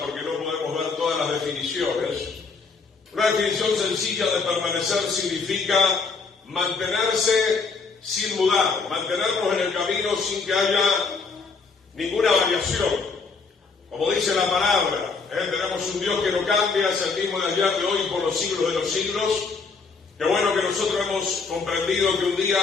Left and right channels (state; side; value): quieter; right; 4.7 dB